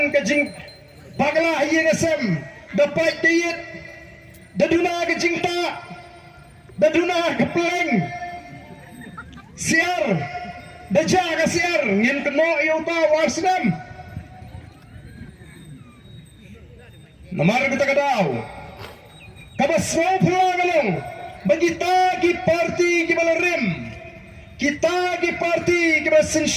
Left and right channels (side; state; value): both; identical; correlation 1.00